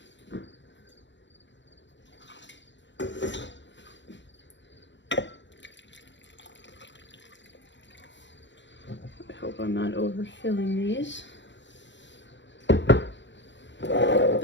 I'm not overfilling these. I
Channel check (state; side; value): late; right; 0.53 ms